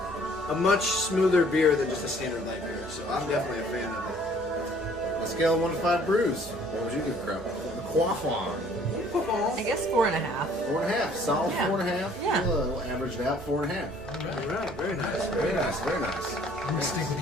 much smoother beer than just a standard light beer. So I'm definitely a fan of it. On a scale of 1 to 5 brews, what would you give Crap? The Quaff On. I guess 4.5. 4.5. Solid Yeah. 4.5. Yeah. We'll average it out 4.5. All right, very nice. Very nice. Very nice. I'm gonna stick with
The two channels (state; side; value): normal; both; correlation 0.57